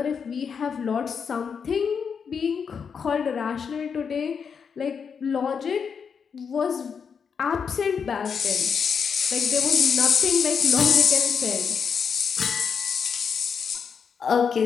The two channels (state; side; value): quieter; right; 6.4 dB